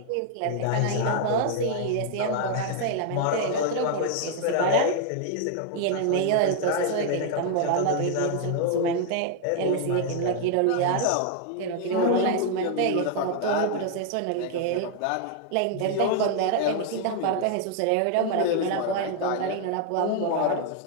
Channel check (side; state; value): both; different; correlation 0.00